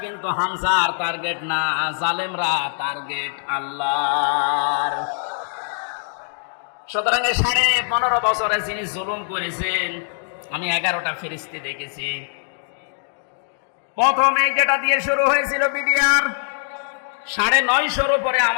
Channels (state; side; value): silent; right; digital silence